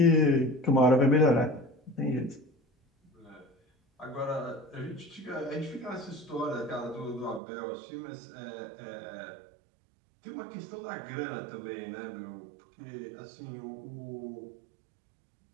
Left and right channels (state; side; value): drops out; left; at 7.4 s